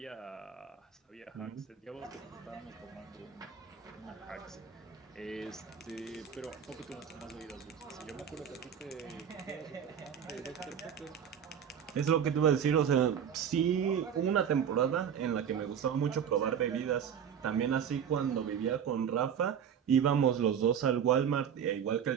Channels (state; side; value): quieter; left; 8.2 dB